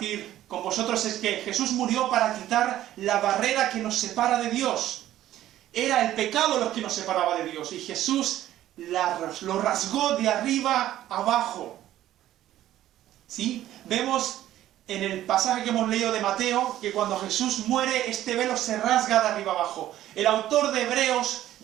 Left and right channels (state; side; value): quieter; left; 13.2 dB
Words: con vosotros es que Jesús murió para quitar la barrera que nos separa de Dios. Era el pecado lo que nos separaba de Dios, y Jesús lo rasgó de arriba abajo. ¿Sí? Vemos en el pasaje que hemos leído de Mateo que cuando Jesús muere, este velo se rasga de arriba abajo. El autor de Hebreos